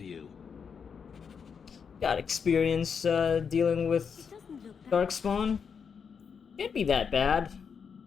you. Got experience dealing with darkspawn. Can't be that bad.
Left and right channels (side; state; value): right; quieter; 6.4 dB